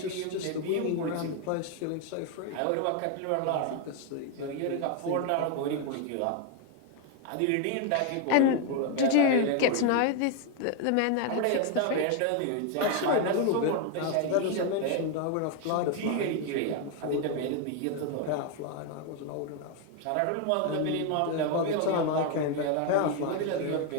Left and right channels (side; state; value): both; different; correlation 0.01